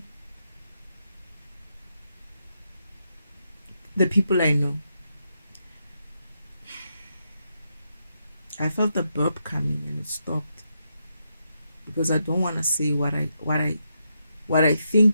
the people I know. I felt the burp coming and it stopped because I don't want to say what I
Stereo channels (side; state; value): both; inverted; correlation -0.82